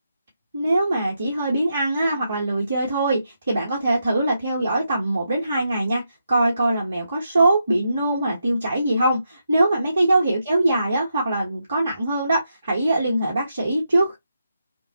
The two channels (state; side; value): inverted; both; correlation -0.83